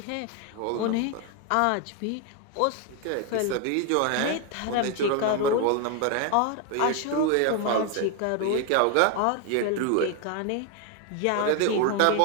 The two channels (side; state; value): both; different; correlation 0.01